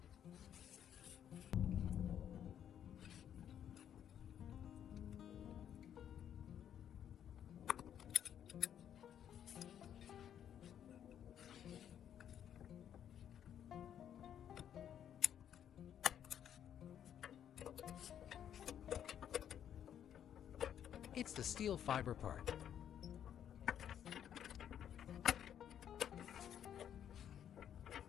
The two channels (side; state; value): right; quieter; 9.6 dB